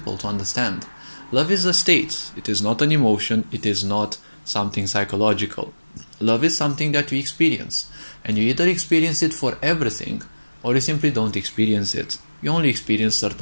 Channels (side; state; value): both; inverted; correlation -1.00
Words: to understand. Love is a state. It is not an emotion. It is not something psychological. Love is something that you experience, and you either experience it for everything or you simply don't experience it. You only experience